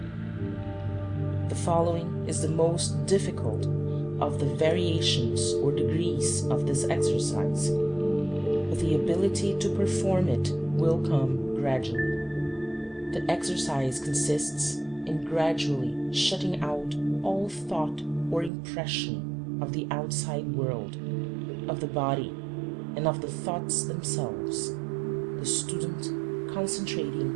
The following is the most difficult of the variations or degrees of this exercise, but the ability to perform it will come gradually. The exercise consists in gradually shutting out all thought or impression of the outside world, of the body, and of the thoughts themselves, the student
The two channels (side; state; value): left; drops out; at 18.5 s